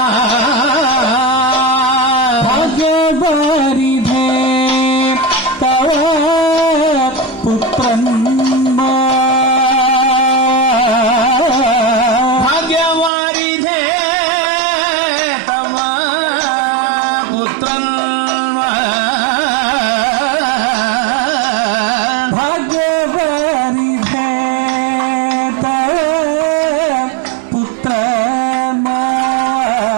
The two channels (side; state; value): left; drops out; at 13.1 s